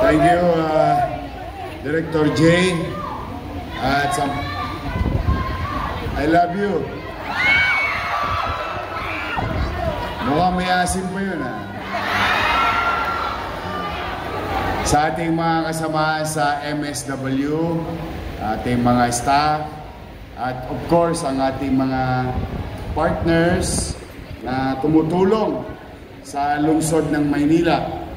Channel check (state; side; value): identical; both; correlation 1.00